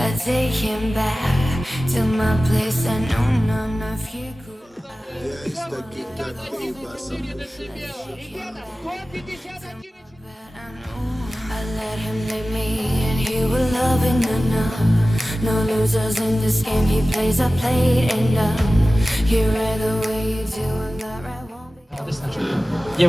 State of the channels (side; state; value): both; normal; correlation 0.96